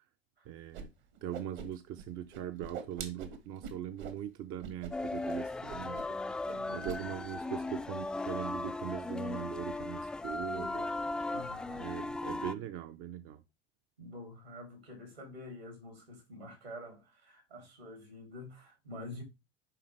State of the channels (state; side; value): normal; both; correlation 0.58